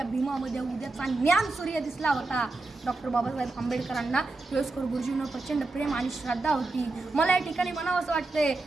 भीमामध्ये उद्याचा ज्ञान सूर्य दिसला होता. डॉक्टर बाबासाहेब आंबेडकरांना केळुस्कर गुरुजींवर प्रचंड प्रेम आणि श्रद्धा होती. मला या ठिकाणी म्हणावं असं वाटतंय,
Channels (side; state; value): left; quieter; 3.2 dB